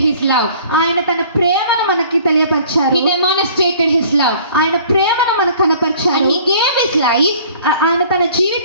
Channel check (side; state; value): both; inverted; correlation -0.52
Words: His love. ఆయన తన ప్రేమను మనకి తెలియపరిచారు. He demonstrated His love. ఆయన ప్రేమను మనకు కనపరిచారు. And He gave His life, ఆయన తన